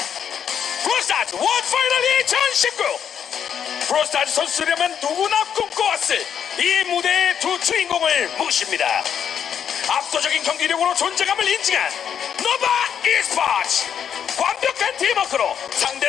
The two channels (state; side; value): quieter; right; 8.3 dB